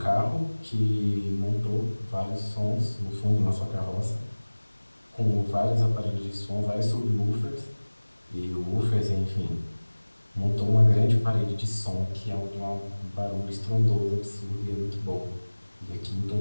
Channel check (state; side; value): inverted; both; correlation -1.00